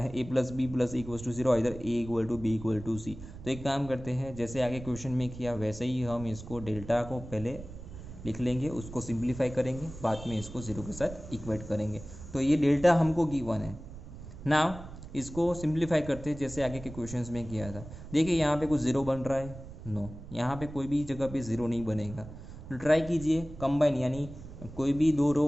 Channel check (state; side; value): noise; right; rumble, 13 dB below the sound